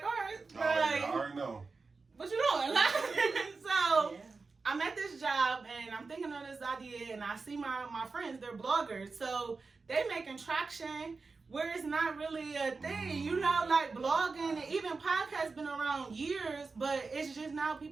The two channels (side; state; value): left; quieter; 4.2 dB